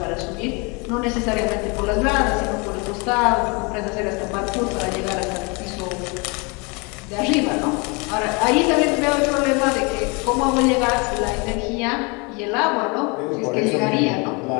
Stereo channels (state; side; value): quieter; right; 30.0 dB